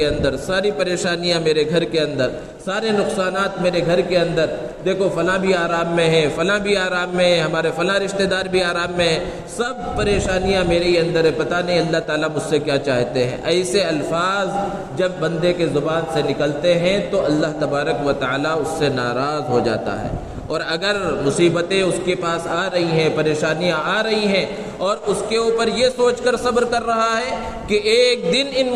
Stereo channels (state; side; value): identical; both; correlation 1.00